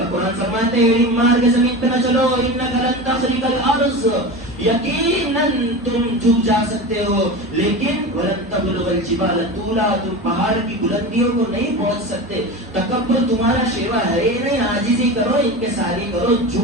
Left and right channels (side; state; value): both; normal; correlation 0.28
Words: قرآن فرماتے ہیں مار کے زمین پہ نہ چلو، انک لن تخرق الارض، یقیناً تم جھک جا سکتے ہو، لیکن وَلَن تَبْلُغَ الْجِبَالَ طُولًا، تم پہاڑ کی بلندیوں کو نہیں پہنچ سکتے. تکبر تمہارا شیوا ہے ہی نہیں. عاجزی کرو، انکساری کرو،